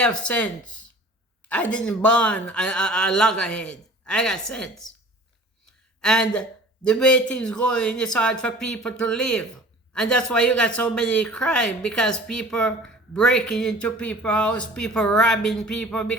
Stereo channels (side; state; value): both; normal; correlation 0.45